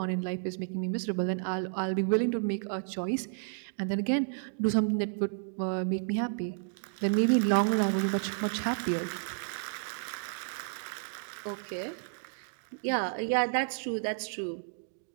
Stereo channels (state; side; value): silent; left; digital silence